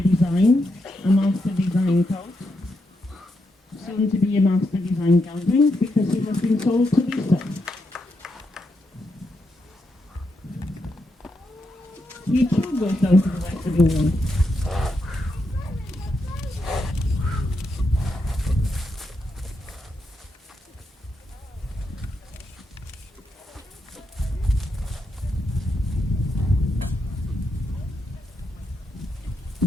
a master design coat. Soon to be a master design gelding because he has been sold to Lisa. He too goes down to the west of England.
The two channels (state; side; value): normal; both; correlation 0.82